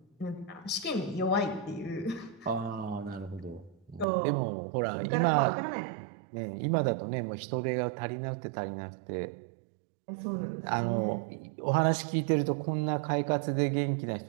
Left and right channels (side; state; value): left; drops out; at 4.0 s